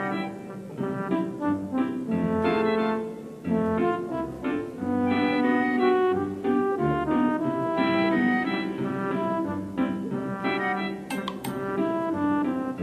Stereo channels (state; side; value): identical; both; correlation 1.00